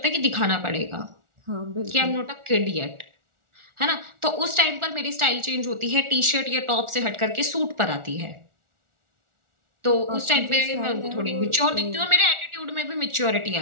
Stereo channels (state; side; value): late; left; 1.4 ms